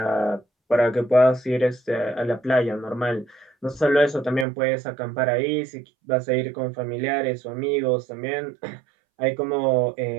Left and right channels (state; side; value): drops out; left; at 4.5 s